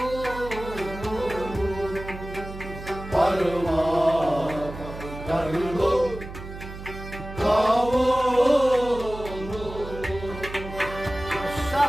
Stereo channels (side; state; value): right; noise; hum, 12 dB below the sound